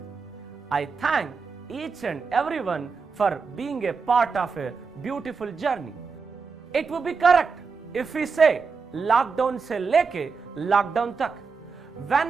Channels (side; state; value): left; quieter; 5.1 dB